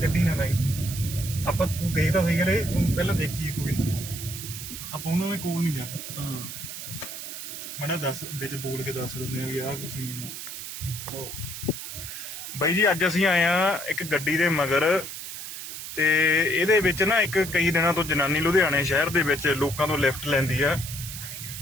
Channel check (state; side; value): noise; right; hiss, 9 dB below the sound